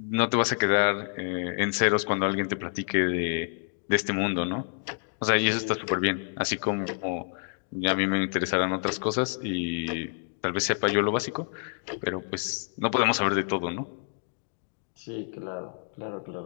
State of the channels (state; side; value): silent; right; 59 dB below the other